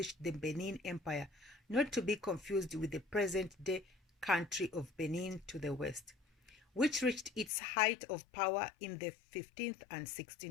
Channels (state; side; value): drops out; right; at 7.5 s